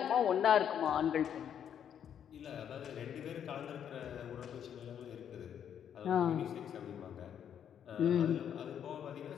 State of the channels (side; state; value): right; quieter; 8.9 dB